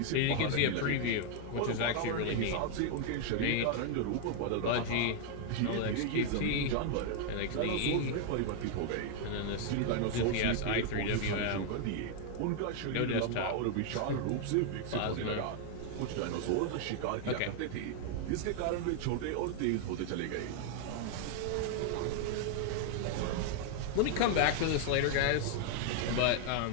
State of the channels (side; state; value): both; different; correlation 0.00